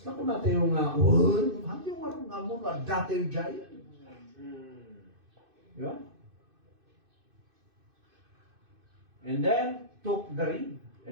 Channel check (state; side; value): late; left; 2.6 ms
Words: kung natin yung hati yung marong nga mo, dati yung jaya. Diba? And then, took the reed